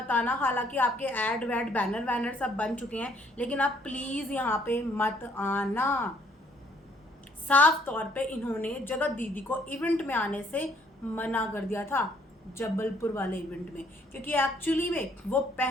आना। हालांकि आपके ऐड वैड बैनर वैनर सब बन चुके हैं, लेकिन आप प्लीज़ यहाँ पे मत आना। साफ तौर पे इन्होंने जगत दीदी को इवेंट में आने से मना कर दिया था, जबलपुर वाले इवेंट में। क्योंकि एक्चुअली में वो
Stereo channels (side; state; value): both; normal; correlation 0.65